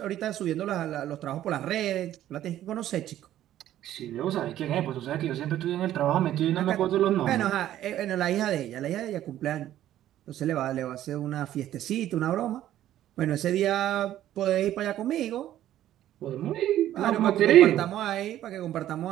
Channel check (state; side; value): quieter; left; 12.6 dB